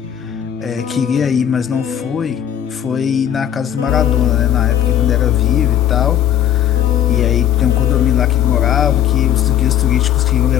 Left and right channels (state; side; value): quieter; right; 10.2 dB